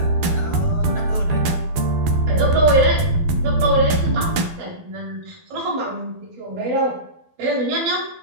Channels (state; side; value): late; left; 12 ms